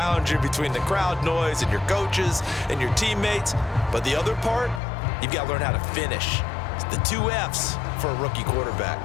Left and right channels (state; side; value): drops out; right; at 4.8 s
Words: you between the crowd noise and your coaches and your teammates. But the other part, you've got to learn how to finish. It's the 2 F's for a rookie quarterback.